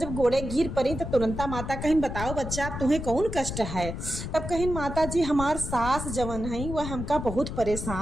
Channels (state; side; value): noise; left; rumble, 6 dB below the sound